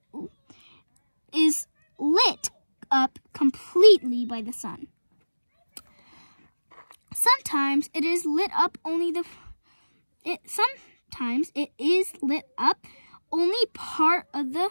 lit up completely by the sun. Sometimes it is lit up only part of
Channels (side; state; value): both; inverted; correlation -1.00